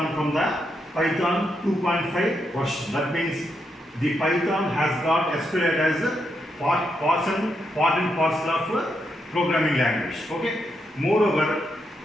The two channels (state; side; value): normal; both; correlation 0.81